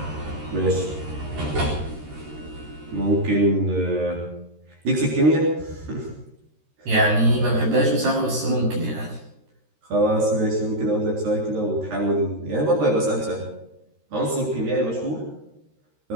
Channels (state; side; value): late; left; 13 ms